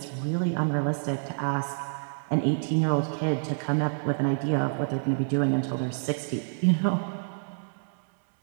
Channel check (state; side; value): silent; left; digital silence